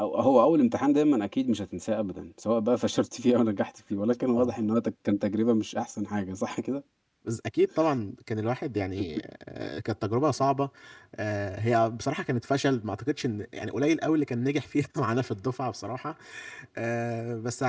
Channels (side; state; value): both; identical; correlation 1.00